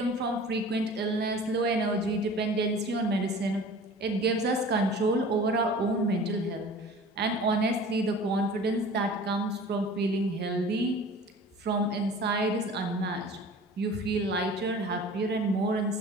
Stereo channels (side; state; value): both; normal; correlation 0.43